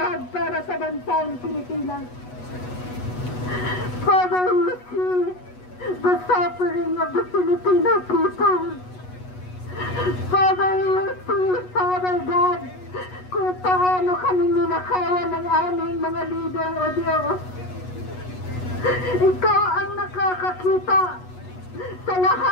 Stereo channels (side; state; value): right; late; 8.2 ms